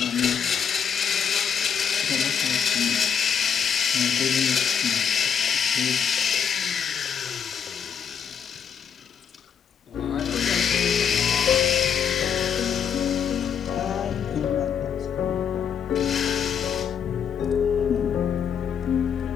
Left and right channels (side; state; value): right; quieter; 7.6 dB